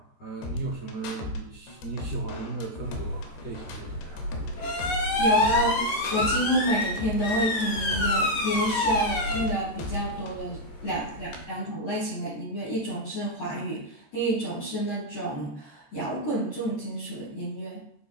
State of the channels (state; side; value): late; right; 14 ms